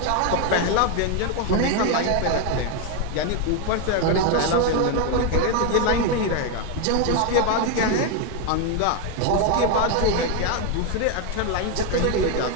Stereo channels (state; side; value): different; both; correlation 0.01